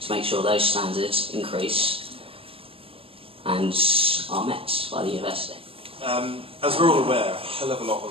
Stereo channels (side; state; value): left; late; 0.27 ms